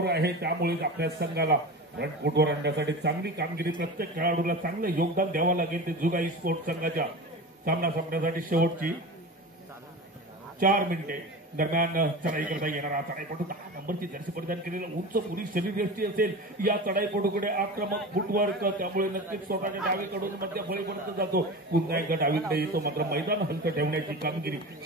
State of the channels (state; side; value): normal; both; correlation 0.30